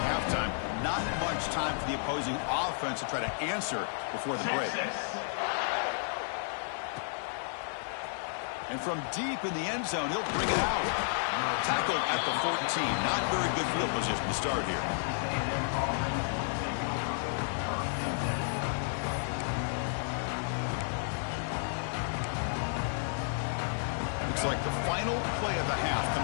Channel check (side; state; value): right; silent; digital silence